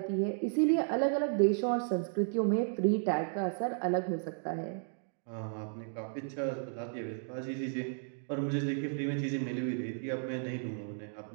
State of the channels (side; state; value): left; silent; digital silence